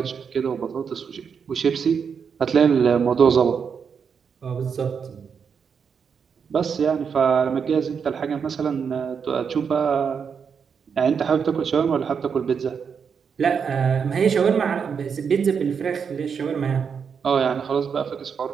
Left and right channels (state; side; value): quieter; left; 6.5 dB